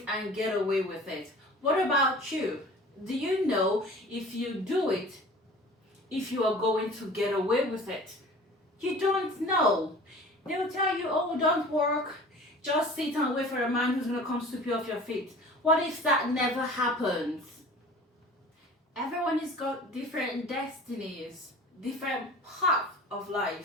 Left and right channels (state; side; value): normal; both; correlation 0.43